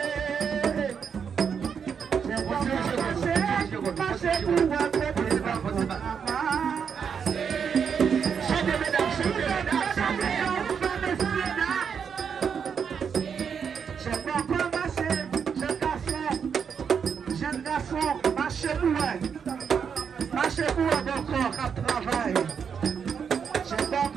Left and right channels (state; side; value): quieter; left; 6.9 dB